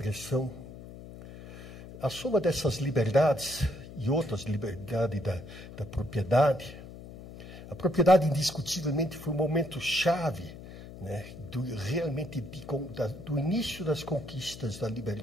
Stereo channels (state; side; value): noise; left; hum, 14 dB below the sound